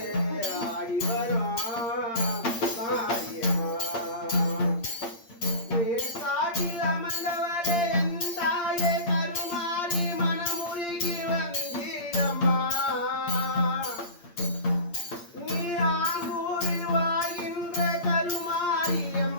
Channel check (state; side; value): late; right; 8.7 ms